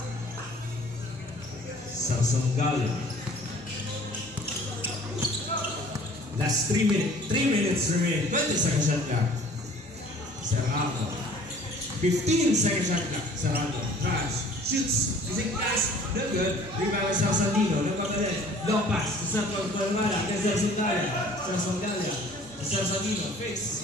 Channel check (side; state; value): both; normal; correlation 0.51